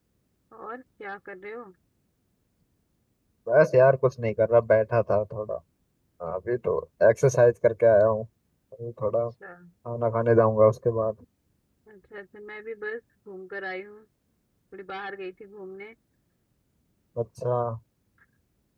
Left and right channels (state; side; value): identical; both; correlation 1.00